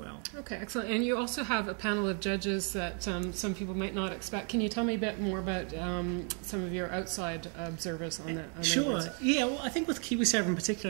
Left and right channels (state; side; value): quieter; left; 39.3 dB